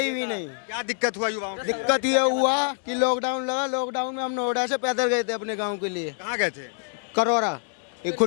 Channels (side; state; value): right; silent; digital silence